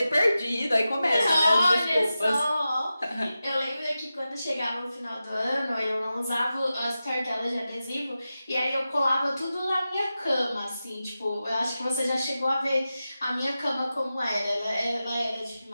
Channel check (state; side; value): inverted; both; correlation -0.93